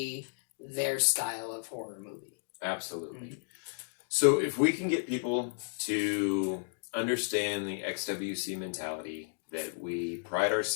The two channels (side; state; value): right; silent; digital silence